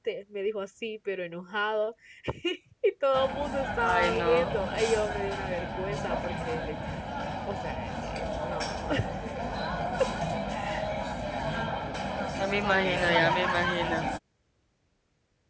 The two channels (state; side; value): identical; both; correlation 1.00